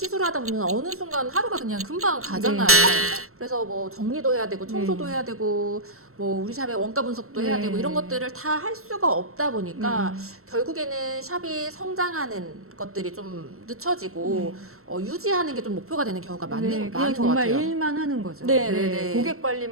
보면 어느 순간 하루가 그냥 금방 가잖아요. 네. 그래서 뭐 정리도 해야 되고 청소도 해야 되고 뭐 우리 샵의 원가 분석도 해야 네. 되고 이런 것들을 다 할 수가 없다 보니까 결국에는 샵이 성장하는 것들이 좀 늦춰지고 유지하는 게 좀 목표가 되는 경우가 네, 많은 그냥 것 정말 같아요. 일만 하는 거죠. 네, 네, 네. 고객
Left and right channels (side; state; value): left; late; 0.63 ms